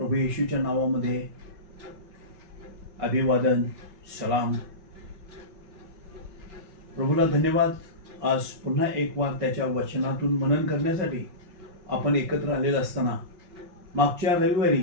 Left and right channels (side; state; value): left; late; 5.8 ms